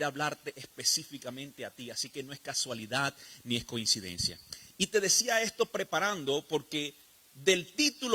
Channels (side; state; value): both; identical; correlation 1.00